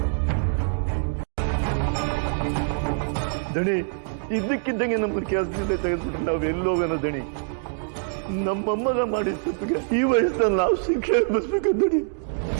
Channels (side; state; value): left; silent; digital silence